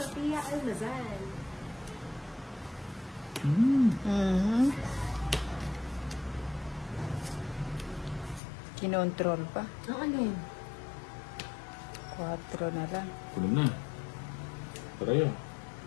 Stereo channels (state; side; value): drops out; right; at 8.4 s